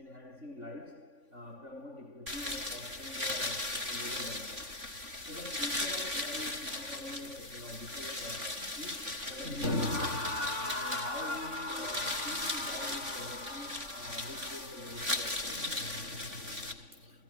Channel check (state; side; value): late; left; 3.5 ms